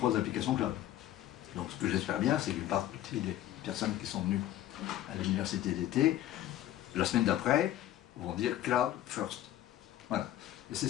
applications cloud. Donc ce que j'espère bien, c'est qu'une partie des personnes qui sont venues à l'université d'été, la semaine d'après, vont dire Cloud First. Voilà. Et c'est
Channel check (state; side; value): quieter; right; 13.1 dB